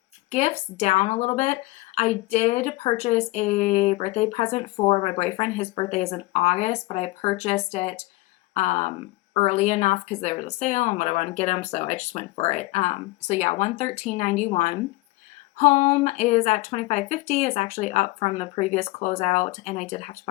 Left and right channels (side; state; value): right; quieter; 20.8 dB